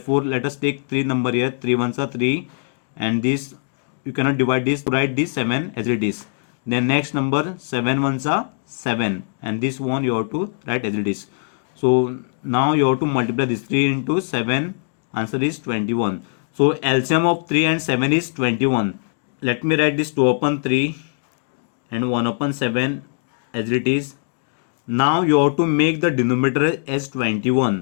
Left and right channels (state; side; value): silent; right; digital silence